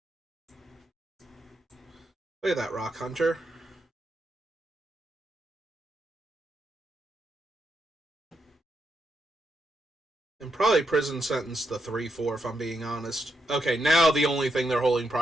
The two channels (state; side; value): normal; both; correlation 0.82